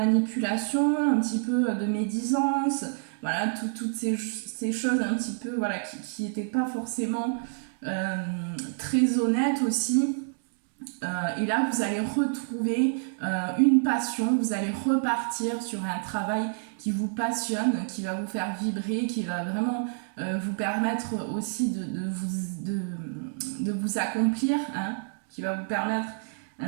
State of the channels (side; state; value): left; silent; digital silence